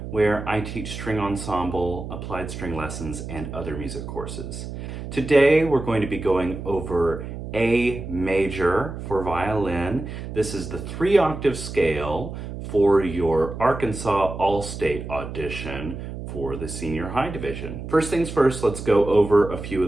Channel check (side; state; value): right; noise; hum, 8 dB below the sound